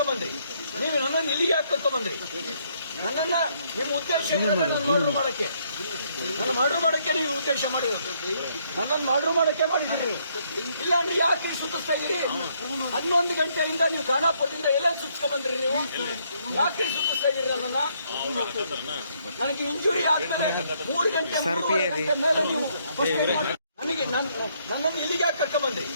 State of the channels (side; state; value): both; inverted; correlation -0.70